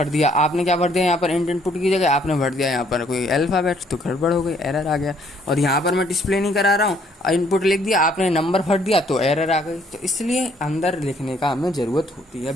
दिया, आपने क्या भर दिया यहाँ पर, इंट इनपुट की जगह आपने भर दिया यहाँ पर कोई अल्फ़ाबेट, तो गड़बड़ हो गई, एरर आ गया। और यहाँ पर मैं डिस्प्ले नहीं करा रहा हूँ, इनपुट लिख दिया, आपने नंबर भर दिया तो एरर आ गई। तो इसलिए अंदर लिखने का हमें ज़रूरत होती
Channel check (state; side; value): normal; both; correlation 0.65